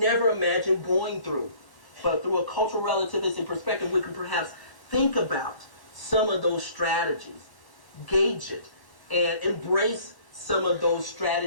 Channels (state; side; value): late; right; 1.1 ms